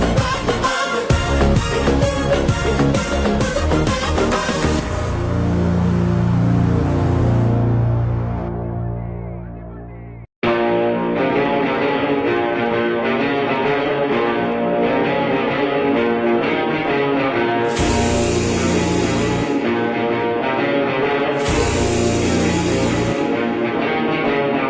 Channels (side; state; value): both; identical; correlation 1.00